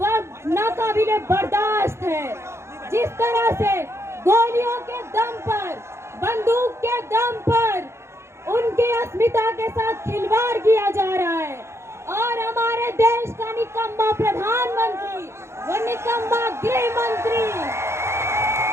नाकाबिले बर्दाश्त है। जिस तरह से गोलियों के दम पर, बंदूक के दम पर उनकी अस्मिता के साथ खिलवाड़ किया जा रहा है और हमारे देश का निकम्मा प्रधानमंत्री, वो निकम्मा गृह मंत्री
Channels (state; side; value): late; left; 0.13 ms